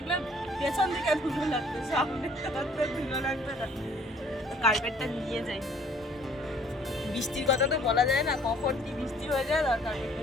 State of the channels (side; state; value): both; normal; correlation 0.57